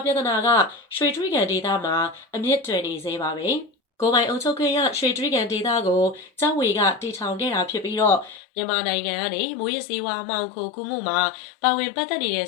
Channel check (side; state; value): right; drops out; at 8.4 s